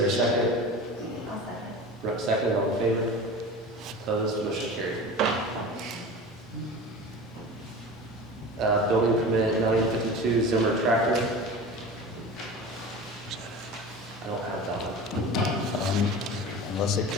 a second? I'll second. Rupp second, all in favor? Opposed, motion carried. Building permit 952 Zimmer tractor. I don't have that one. Unless it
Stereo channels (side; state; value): both; normal; correlation 0.34